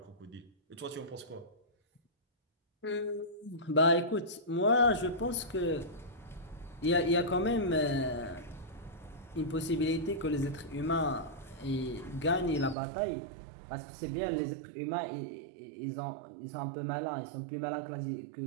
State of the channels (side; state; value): left; drops out; at 12.8 s